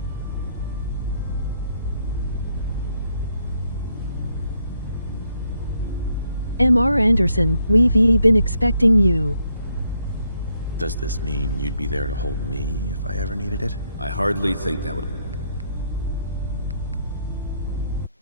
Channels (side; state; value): both; inverted; correlation -0.74